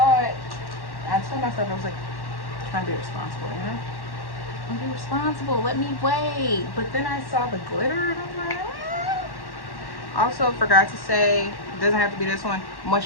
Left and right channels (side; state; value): right; late; 1.1 ms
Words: it. I told myself, I was like, trying to be responsible, you know? I'm be responsible. Let me wait. But then I saw the glitter, and I'm like, Also, forgot to say, it doesn't have to be this one.